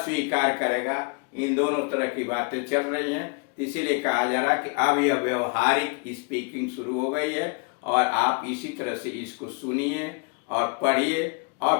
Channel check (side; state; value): right; quieter; 34.9 dB